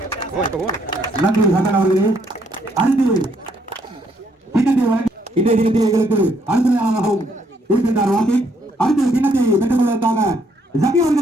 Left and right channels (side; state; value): both; normal; correlation 0.70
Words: நன்றி ஹசன் அவர்களே. அடுத்து கிண்ணத்தை இன்றைய தினத்தில் எங்களுக்கு அனுசரணையாகவும் இருக்கின்றார் வாசி. அடுத்து கிண்ணத்தை பெற்றுக் கொள்வதற்காக ஜக்கி